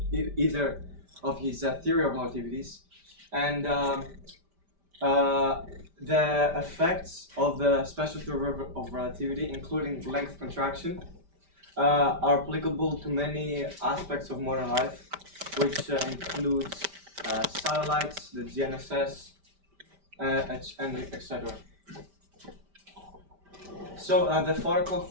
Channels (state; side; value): late; left; 5.1 ms